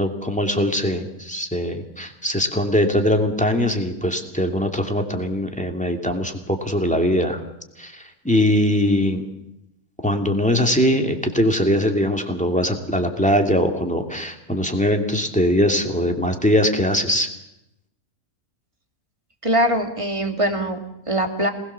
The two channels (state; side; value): normal; both; correlation 0.38